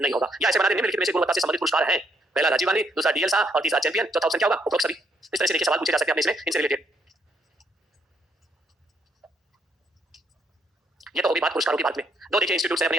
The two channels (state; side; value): normal; both; correlation 0.72